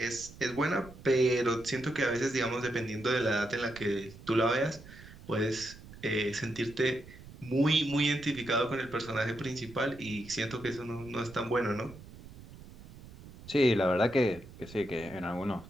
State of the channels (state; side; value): noise; right; rumble, 18 dB below the sound